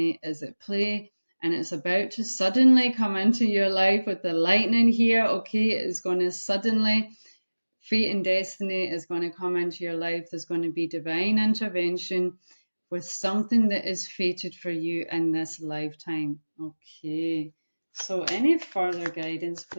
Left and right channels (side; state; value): both; inverted; correlation -1.00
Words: is at play, and it's about to suddenly come into your life with the lightning here. Okay, it is going to suddenly, fate and destiny is going to come into your life. There's going to be divine intervention with something that is fated for you in this lifetime. Okay, so any further guidance,